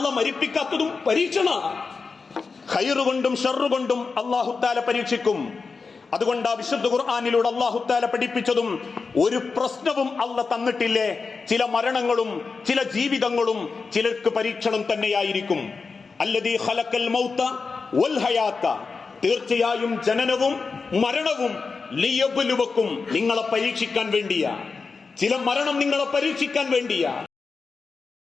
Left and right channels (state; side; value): quieter; right; 4.7 dB